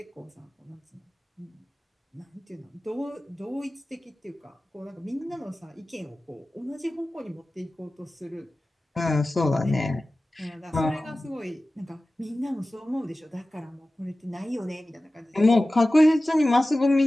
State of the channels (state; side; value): normal; both; correlation 0.96